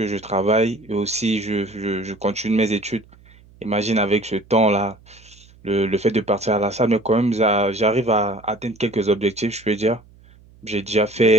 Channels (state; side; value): noise; right; hum, 26 dB below the sound